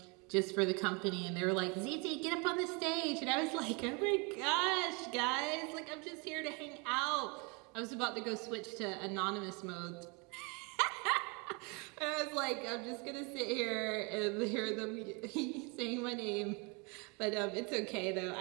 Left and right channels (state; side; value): quieter; left; 31.3 dB